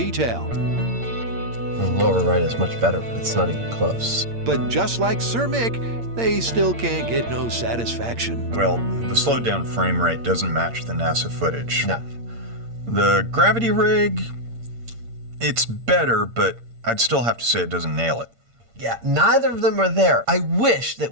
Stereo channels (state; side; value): late; left; 8.7 ms